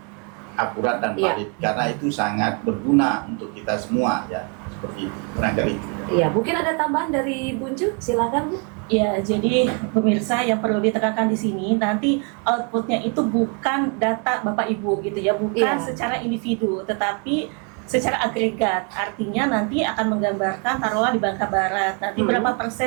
akurat dan valid, karena itu sangat berguna untuk kita semua ya, seperti itu, barangkali itu. Iya, mungkin ada tambahan dari Bunju, silakan Bu. Ya, jadi pemirsa yang perlu ditekankan di sini, nanti outputnya itu bukan data Bapak Ibu gitu ya, bukan secara individu, tetapi secara agregat. Artinya nanti akan menggambarkan taruhlah di Bangka Barat nanti berapa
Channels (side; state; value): left; quieter; 36.3 dB